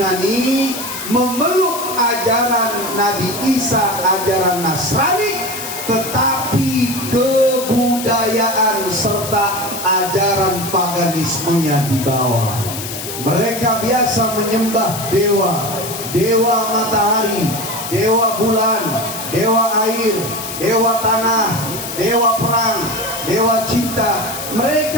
memeluk ajaran Nabi Isa, ajaran Nasrani, tetapi kebudayaan serta ajaran paganismenya di bawah. Mereka biasa menyembah dewa matahari, dewa bulan, dewa air, dewa tanah, dewa perang, dewa cinta.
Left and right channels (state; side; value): noise; left; hiss, 8 dB below the sound